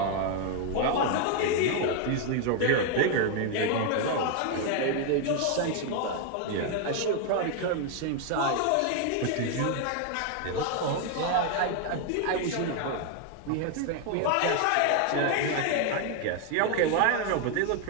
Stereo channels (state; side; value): different; both; correlation 0.01